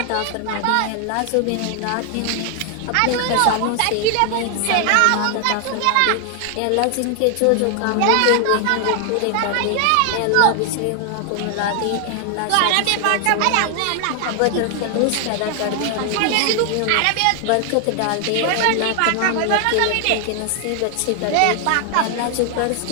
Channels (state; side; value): different; both; correlation 0.00